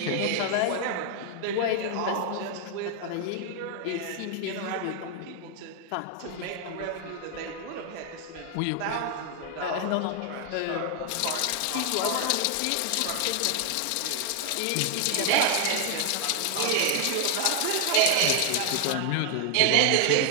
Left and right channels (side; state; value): both; different; correlation 0.00